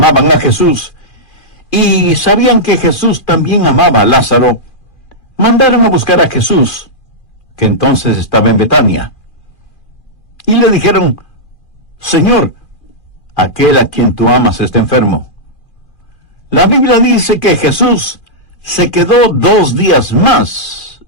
a Jesús, y sabían que Jesús también amaba a Lázaro, mandaron a buscar a Jesús, que entonces estaba en Betania. Y le dijeron, Señor, aquel a quien tú amas está enfermo. La Biblia dice que Jesús se quedó 2 días más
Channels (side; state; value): right; late; 2.4 ms